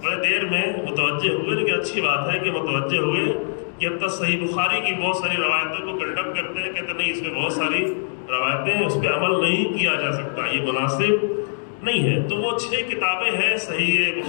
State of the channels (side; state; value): right; silent; digital silence